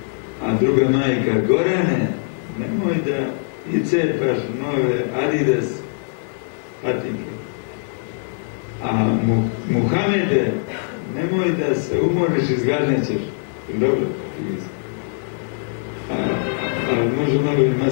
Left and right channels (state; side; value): silent; right; digital silence